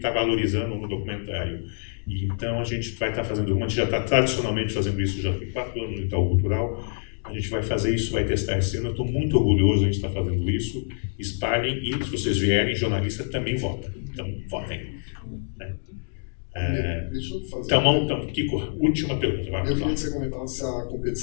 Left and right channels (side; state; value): right; silent; digital silence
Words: valorizando no documentário. E então a gente vai estar fazendo, a gente já está tradicionalmente fazendo isso, já tem 4 anos no Itaú Cultural, a gente vai fazer isso, vai testar esse ano, eu estou muito orgulhoso de a gente estar fazendo isso, espalhem, e se vocês vierem, jornalista também vota, então votem. Né? Deixa eu fazer então, Kiko, última pergunta. Eu queria que você comentasse a